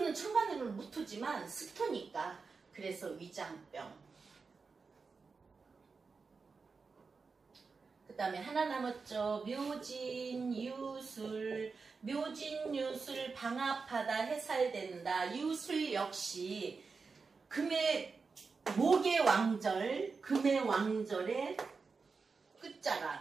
천간으로는 무토지만 습토니까 그래서 위장병. 그 다음에 하나 남았죠. 묘진, 유술. 묘진, 유술 방합하다, 해살된다. 유술 역시 목의 왕절, 금의 왕절에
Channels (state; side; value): quieter; left; 4.7 dB